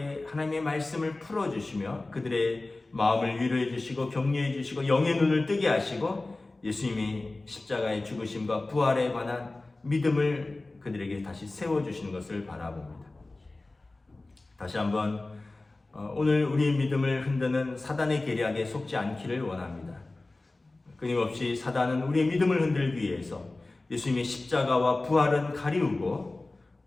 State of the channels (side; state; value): right; quieter; 3.1 dB